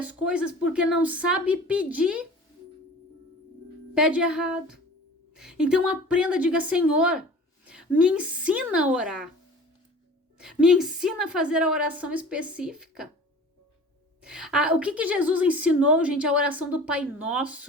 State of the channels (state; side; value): normal; both; correlation 0.42